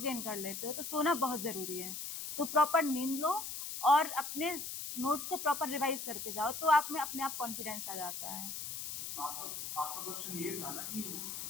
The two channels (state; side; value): noise; left; hiss, 6 dB below the sound